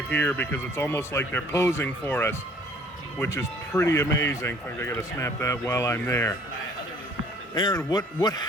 here because it's almost like they're posing for us, which is pretty amazing. In fact, I gotta snap that while I'm there. Aaron, what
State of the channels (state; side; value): normal; both; correlation 0.56